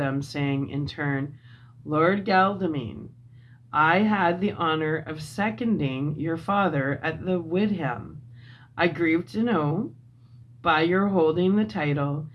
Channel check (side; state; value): both; identical; correlation 1.00